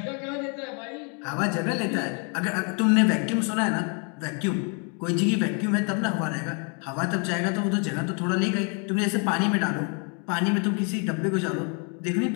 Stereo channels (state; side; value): quieter; right; 37.6 dB